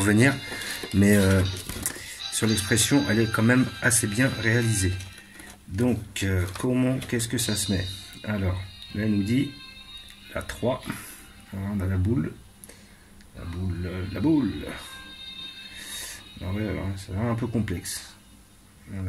Mais sur l'expression, elle est quand même assez bien réalisée. Donc, qu'est-ce que ça se met? Alors, là, elle nous dit la 3. Alors, on a la boule. La boule. Alors, ouais, alors, ça va un peu complexe.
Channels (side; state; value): both; identical; correlation 1.00